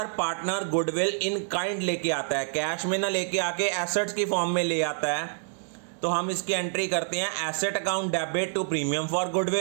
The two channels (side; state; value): left; silent; 58 dB below the other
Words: पार्टनर गुडविल इन काइंड लेके आता है, कैश में ना लेके आके एसेट्स की फॉर्म में ले आता है, तो हम इसकी एंट्री करते हैं asset account debit to premium for